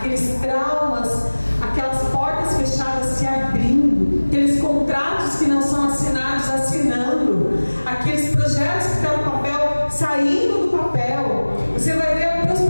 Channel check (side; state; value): both; inverted; correlation -1.00